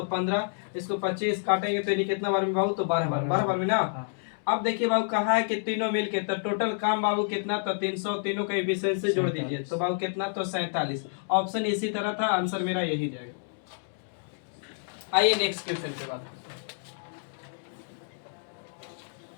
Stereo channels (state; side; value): silent; right; digital silence